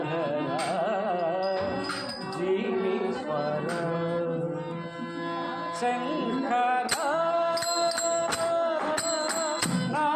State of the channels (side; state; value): both; identical; correlation 1.00